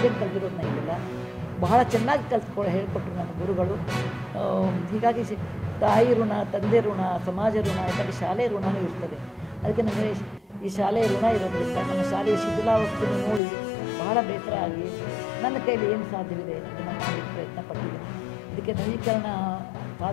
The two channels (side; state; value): right; drops out; at 13.4 s